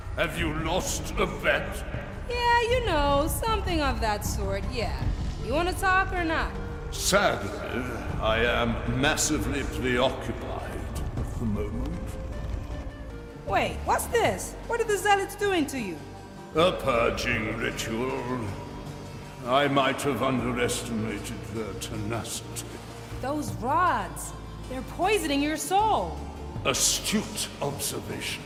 Have you lost a bet? Yeah, you know, something of that sort, yeah. You want to talk or not? Sadly, I am massively preoccupied at the moment. Wait, what's this? What are the zealots doing to you? A purging ritual. I might have underestimated their tenacity. Those rods. They're poisoning your soul. Astute observation.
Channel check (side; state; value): both; identical; correlation 1.00